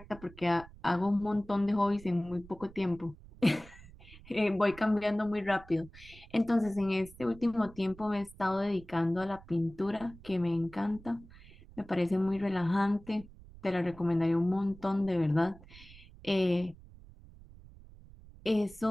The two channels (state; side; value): noise; right; rumble, 20 dB below the sound